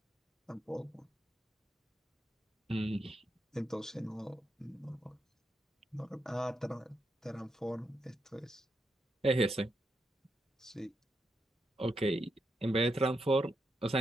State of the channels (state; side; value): normal; both; correlation 0.83